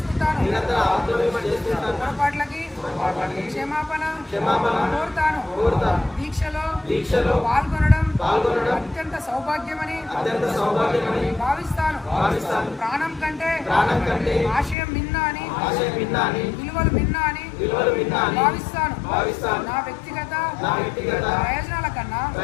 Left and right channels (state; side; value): drops out; right; at 14.8 s